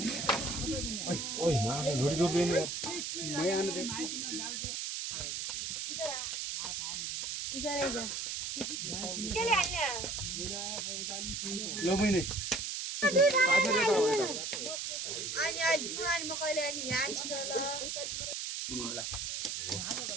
ओइ मार्ने झोडी दोब्ले नि मै आने दे इधर आइज ल मैने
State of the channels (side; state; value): right; noise; hiss, 3 dB below the sound